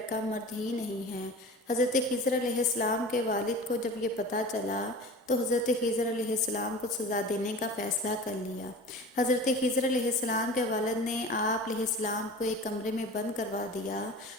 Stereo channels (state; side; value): normal; both; correlation 0.37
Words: مرد ہی نہیں ہے۔ حضرت خضر علیہ السلام کے والد کو جب یہ پتہ چلا تو حضرت خضر علیہ السلام کو سزا دینے کا فیصلہ کر لیا۔ حضرت خضر علیہ السلام کے والد نے آپ علیہ السلام کو ایک کمرے میں بند کروا دیا۔